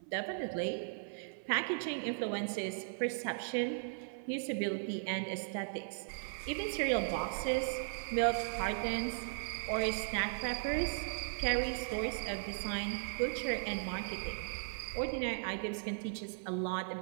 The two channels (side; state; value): left; silent; 53 dB below the other